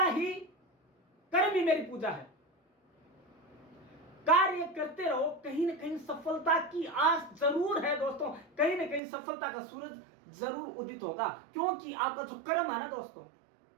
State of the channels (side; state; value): left; drops out; at 9.0 s